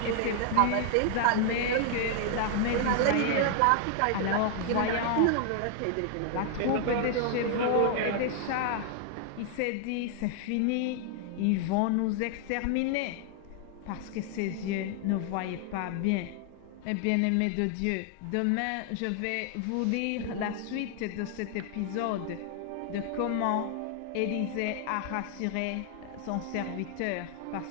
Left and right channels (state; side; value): different; both; correlation 0.00